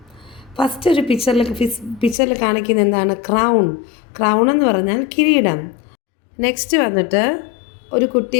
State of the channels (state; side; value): drops out; right; at 2.1 s